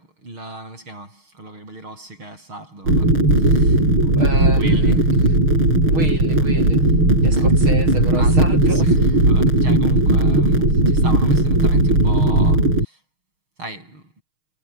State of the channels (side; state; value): left; late; 6.4 ms